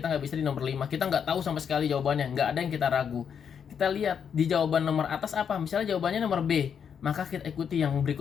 nggak bisa di nomor 5, kita nggak tahu sama sekali jawabannya, nggak ada yang kita ragu. Kita lihat di jawaban nomor atas apa, misalnya jawabannya nomor B, maka kita ikuti yang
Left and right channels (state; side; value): quieter; right; 7.5 dB